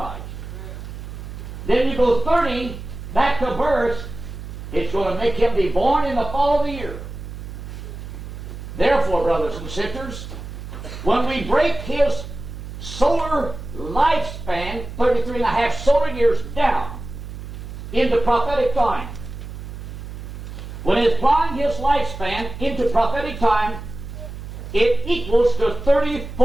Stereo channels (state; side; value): noise; right; hum, 10 dB below the sound